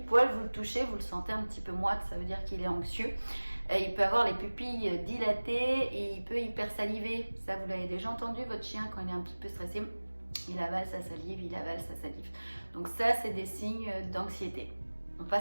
poil, vous le touchez, vous le sentez un petit peu moite, ça veut dire qu'il est anxieux. Il peut avoir les pupilles dilatées et il peut hypersaliver. Ça, vous l'avez déjà entendu, votre chien, quand il est un petit peu stressé, il avale sa salive, il avale sa salive. Donc ça, c'est des signes d'anxiété. On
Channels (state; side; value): inverted; both; correlation -1.00